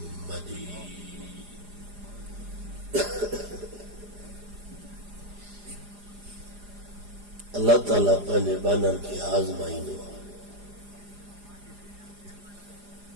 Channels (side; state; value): left; late; 4.9 ms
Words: مجيد. اللہ تعالیٰ پہلے بانا کی آزمائی نو